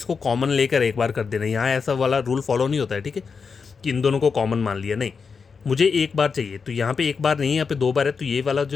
कॉमन लेकर एक बार कर देना, यहाँ ऐसा वाला रूल फॉलो नहीं होता है, ठीक है, कि इन दोनों को कॉमन मान लिया, नहीं, मुझे एक बार चाहिए। तो यहाँ पे एक बार नहीं, यहाँ पे दो बार है, तो ये वाला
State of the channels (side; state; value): right; quieter; 5.5 dB